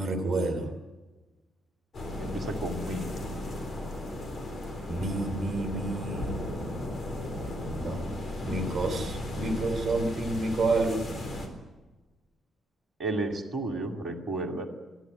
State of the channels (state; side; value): normal; both; correlation 0.73